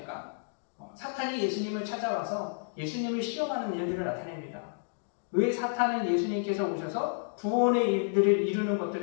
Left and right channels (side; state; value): right; silent; digital silence